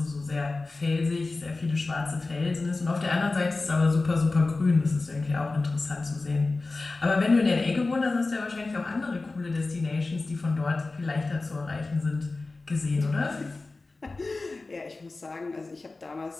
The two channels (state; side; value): quieter; right; 3.5 dB